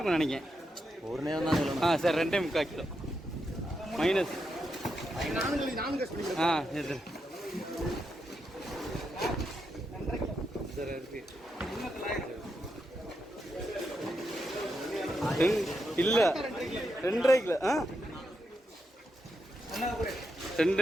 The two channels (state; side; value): normal; both; correlation 0.84